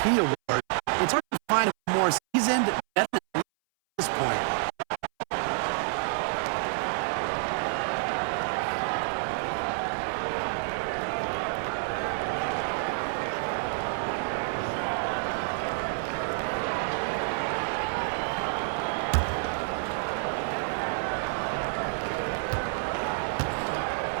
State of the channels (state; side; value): silent; left; 59 dB below the other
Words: award. It's hard to find a more seasoned veteran at this point.